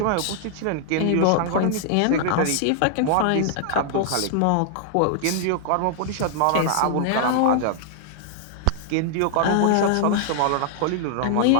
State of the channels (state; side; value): different; both; correlation -0.01